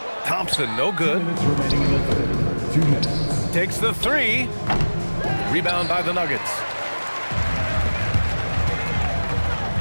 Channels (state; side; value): inverted; both; correlation -1.00